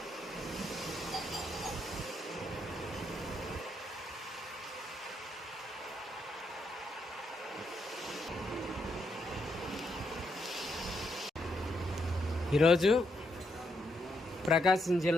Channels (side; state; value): both; normal; correlation 0.78